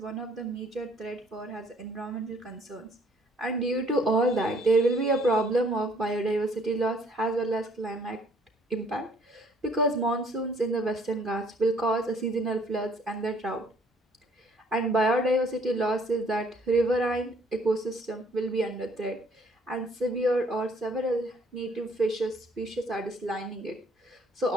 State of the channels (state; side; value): normal; both; correlation 0.61